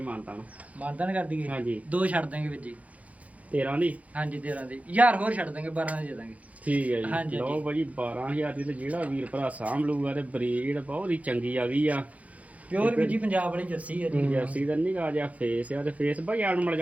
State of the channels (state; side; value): late; left; 0.069 ms